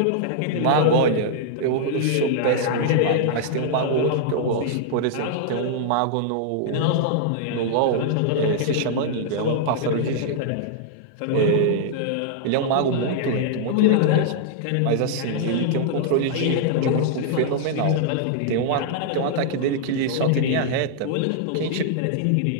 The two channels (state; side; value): different; both; correlation -0.01